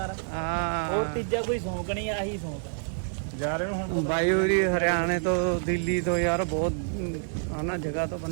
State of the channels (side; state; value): left; silent; 60 dB below the other